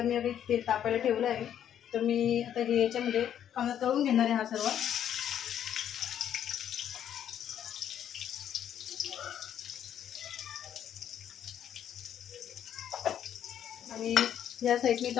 मी आता तेल तापायला ठेवला आहे। तर मी आता हे याच्यामध्ये कांदा तळून घेणार आहे हा सर्व। आणि या साईडने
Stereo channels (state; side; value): quieter; right; 9.9 dB